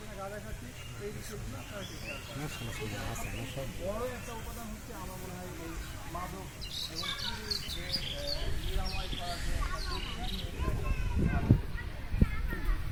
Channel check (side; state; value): both; identical; correlation 1.00